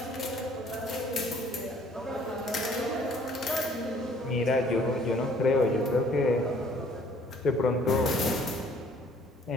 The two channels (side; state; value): both; normal; correlation 0.58